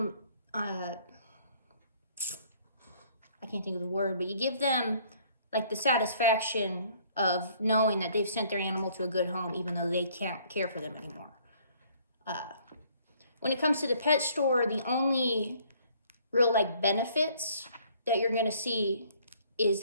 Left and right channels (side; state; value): both; inverted; correlation -0.61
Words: I can't think of the word, but you give them like the satisfaction of knowing that they've sent their animal to a good home, even though they can't care for them anymore. When it comes to the pet store, the only real like benefits that you're gonna see is